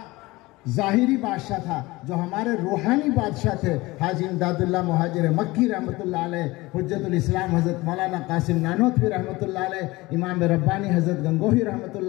ज़ाहिरी बादशाह था, जो हमारे रूहानी बादशाह थे हाजी इमदादुल्लाह मुहाजिर मक्की रहमतुल्लाह अलैह, हुज्जतुल इस्लाम हज़रत मौलाना कासिम नानोतवी रहमतुल्लाह अलैह, इमाम रब्बानी हज़रत गंगोही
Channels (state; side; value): quieter; right; 21.0 dB